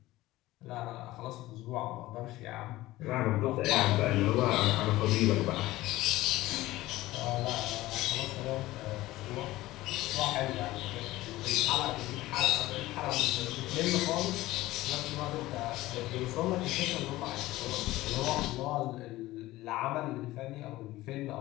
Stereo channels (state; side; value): quieter; right; 17.4 dB